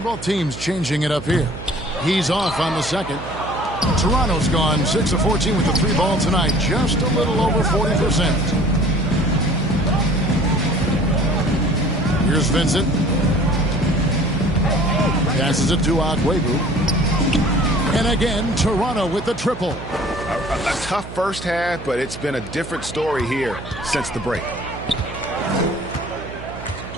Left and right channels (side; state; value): right; noise; hum, 13 dB below the sound